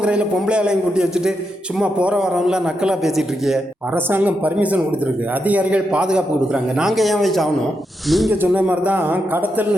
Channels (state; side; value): normal; both; correlation 0.84